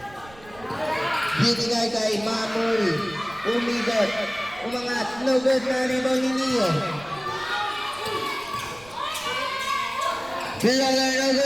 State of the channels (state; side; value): noise; right; rumble, 22 dB below the sound